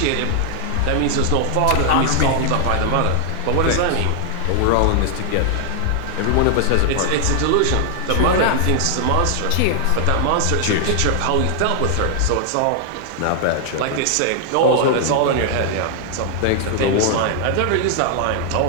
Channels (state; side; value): different; both; correlation 0.00